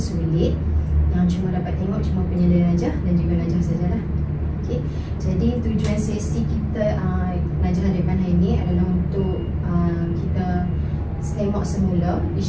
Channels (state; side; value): identical; both; correlation 1.00